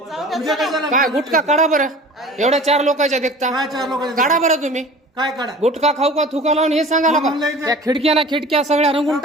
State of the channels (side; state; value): both; normal; correlation 0.42